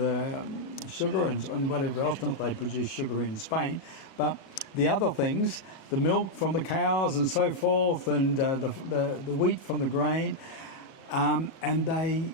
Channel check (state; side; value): late; right; 36 ms